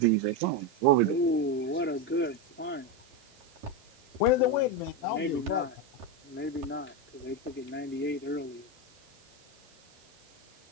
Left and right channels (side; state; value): right; noise; hiss, 29 dB below the sound